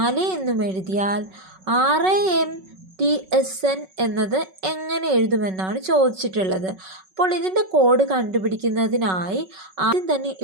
എന്നും എഴുതിയാൽ RAMTSN എന്നത് എങ്ങനെ എഴുതുമെന്നാണ് ചോദിച്ചിട്ടുള്ളത്. അപ്പോൾ ഇതിൻ്റെ കോഡ് കണ്ടുപിടിക്കുന്നതിനായി ആദ്യം തന്നെ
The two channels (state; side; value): late; left; 5.3 ms